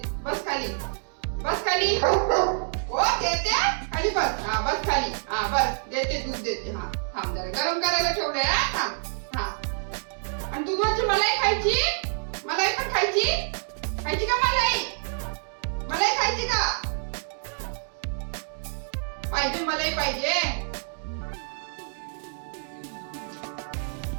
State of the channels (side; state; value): left; silent; digital silence